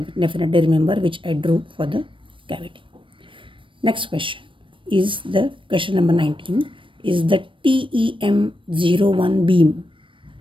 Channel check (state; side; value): late; left; 0.25 ms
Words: remember, which I drew for the cavity. Next question is the question number 19 is the TEM01 beam.